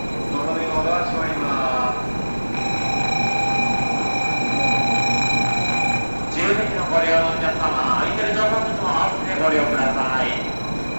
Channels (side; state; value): both; inverted; correlation -1.00